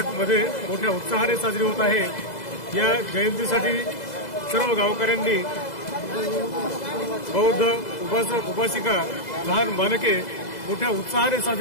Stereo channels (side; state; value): right; late; 2.0 ms